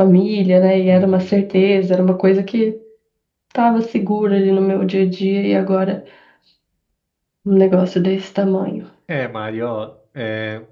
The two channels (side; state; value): both; identical; correlation 1.00